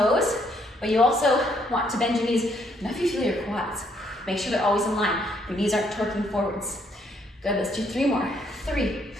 but you also want to bend your knees enough you feel your quads. Make sure they're always in line. Your knees aren't torquing forwards. Good, let's do 3 more. 3.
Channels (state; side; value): normal; both; correlation 0.70